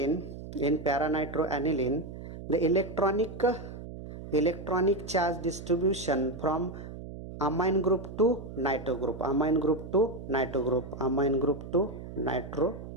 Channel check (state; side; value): noise; right; hum, 11 dB below the sound